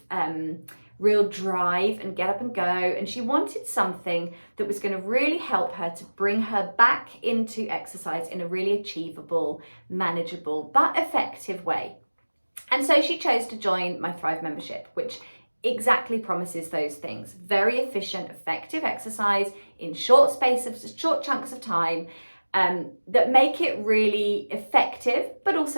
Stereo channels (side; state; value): both; inverted; correlation -1.00